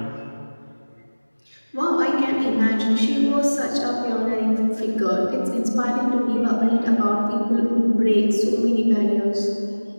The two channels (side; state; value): both; inverted; correlation -1.00